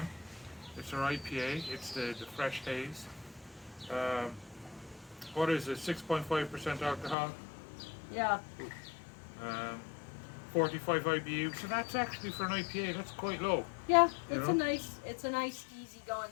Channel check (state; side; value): drops out; right; at 7.2 s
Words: It's our IPA. It's the Fresh Haze. What is it? 6.5% alcohol. Yeah. 45 IBU. So that's actually for an IPA. That's quite low. Yeah, You it's know? a nice, easy going.